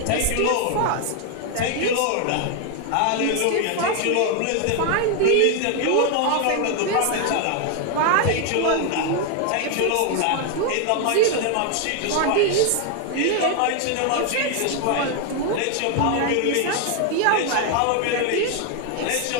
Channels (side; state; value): both; different; correlation 0.00